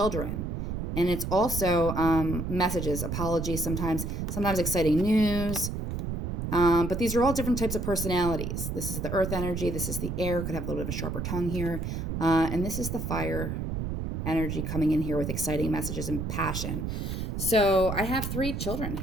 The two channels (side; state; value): right; noise; rumble, 3 dB below the sound